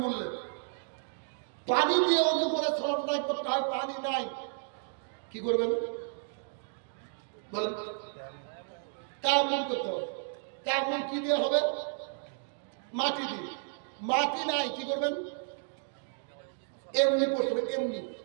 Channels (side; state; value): left; silent; digital silence